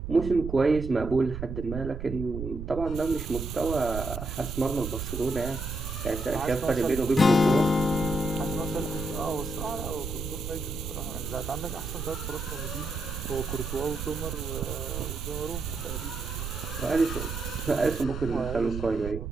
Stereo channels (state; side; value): noise; right; rumble, 6 dB below the sound